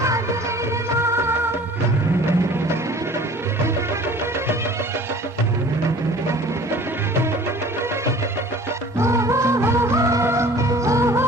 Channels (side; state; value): both; normal; correlation 0.47